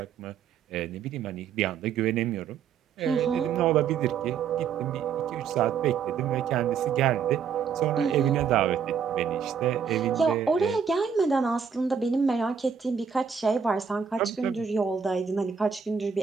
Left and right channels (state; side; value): quieter; left; 6.9 dB